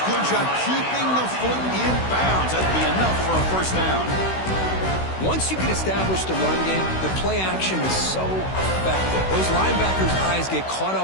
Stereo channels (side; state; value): right; late; 16 ms